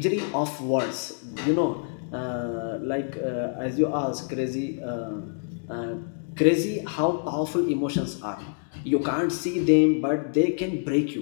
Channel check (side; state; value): right; silent; digital silence